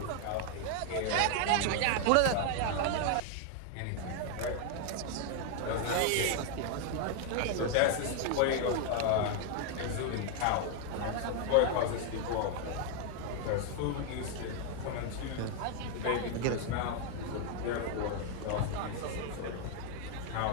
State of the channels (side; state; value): both; different; correlation 0.00